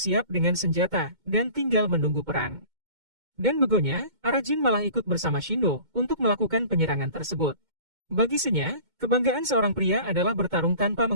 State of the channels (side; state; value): left; late; 2.2 ms